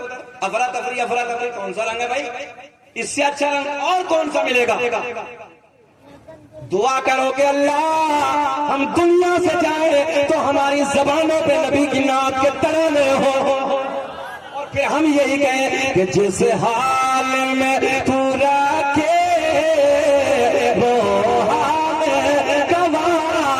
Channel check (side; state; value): both; identical; correlation 1.00